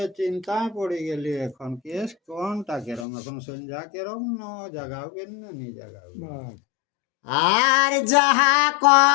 চিন্তায় পড়ে গেলি এখন কেস কোনটা কেরম এখন সন্ধ্যা কেরম ন জাগাবেন না নি জাগাবেন। আর যাহা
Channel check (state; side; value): drops out; right; at 3.1 s